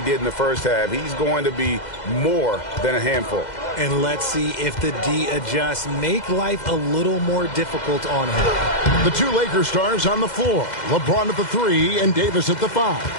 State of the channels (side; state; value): right; late; 2.0 ms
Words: did in the first half, he's going to be more than a handful. And let's see if the D adjusts, make life a little more difficult on him. The two Lakers stars on the floor. LeBron at the 3 and Davis at the